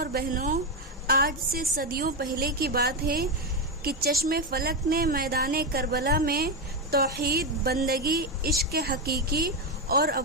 بہنوں، آج سے صدیوں پہلے کی بات ہے کہ چشم فلک نے میدان کربلا میں توحید، بندگی، عشق حقیقی اور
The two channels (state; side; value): normal; both; correlation 0.10